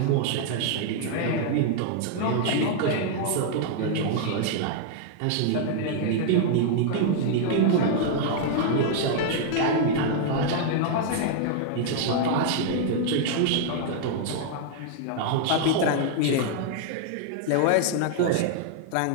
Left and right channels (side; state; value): both; different; correlation 0.00